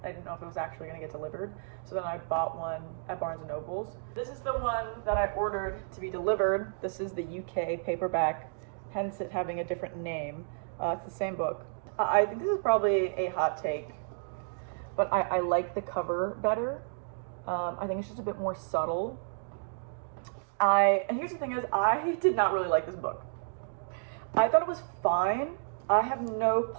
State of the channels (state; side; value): silent; left; digital silence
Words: I didn't know if it was actually going to get delivered. So then I bought one at Barnes & Noble's. This is the one that I ordered to be delivered. This is the UK paperback, hence it having a different name. It's the same book. I think this is probably a hot take, but I like the cover better. I think it's just a bit more subtle. And here's the thing is, I did not really like this book. I thought it was fine. I have no